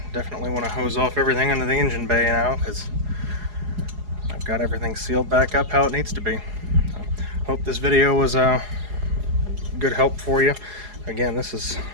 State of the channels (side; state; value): left; late; 4.8 ms